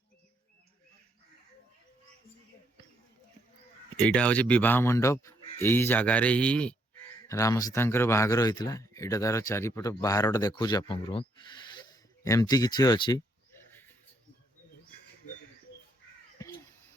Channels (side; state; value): both; normal; correlation 0.73